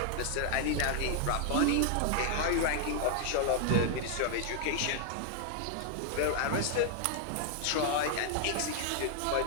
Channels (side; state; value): both; different; correlation 0.00